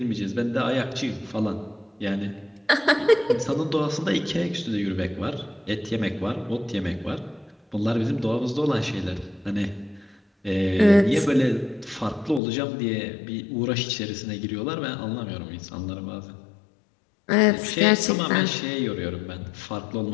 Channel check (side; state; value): right; drops out; at 12.4 s